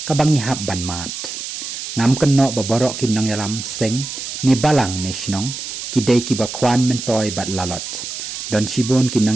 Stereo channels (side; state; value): right; noise; hiss, 7 dB below the sound